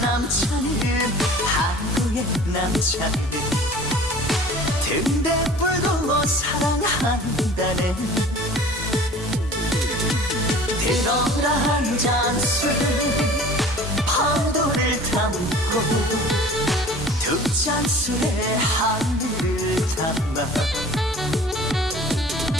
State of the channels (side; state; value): both; normal; correlation 0.45